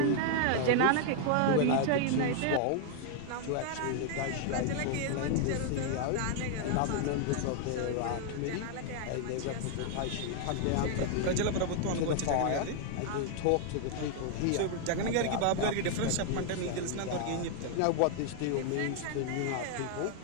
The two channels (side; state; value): both; different; correlation 0.00